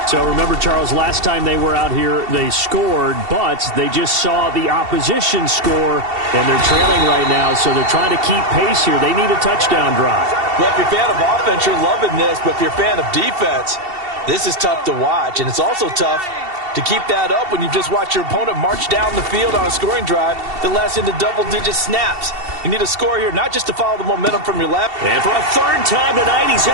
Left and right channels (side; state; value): left; late; 2.7 ms